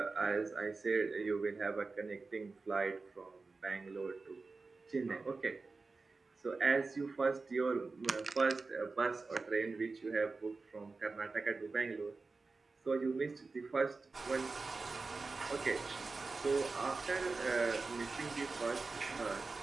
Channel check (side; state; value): left; quieter; 4.0 dB